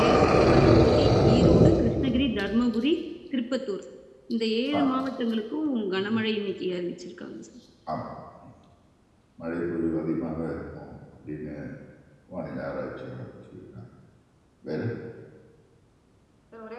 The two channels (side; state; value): both; identical; correlation 1.00